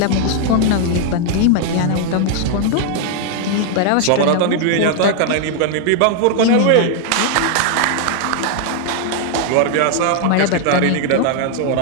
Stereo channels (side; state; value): both; different; correlation 0.00